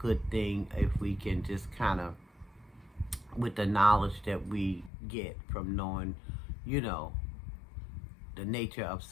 thing if we can just kind of, with the knowledge that we get from knowing, the nature of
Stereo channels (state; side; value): drops out; right; at 4.9 s